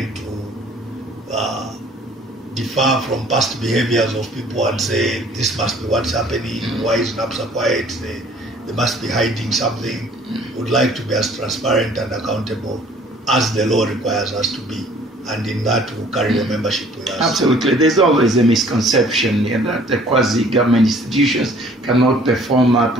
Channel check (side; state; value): both; normal; correlation 0.55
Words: to differ from past behaviors of people and say, this must be what's happening, why is NAPSA quiet, they must be hiding something. Would like to be as transparent and accountable as the law requires us to be. And in that, we'll carry the membership with us. Absolutely. There's always a misconception that the quasi-government institutions cannot perform